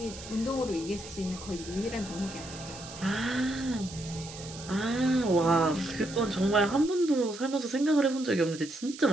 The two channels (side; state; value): right; noise; hiss, 14 dB below the sound